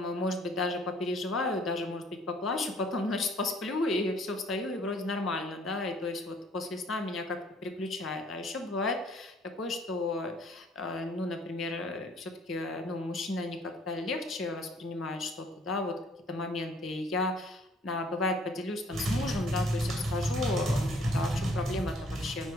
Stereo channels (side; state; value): both; normal; correlation 0.59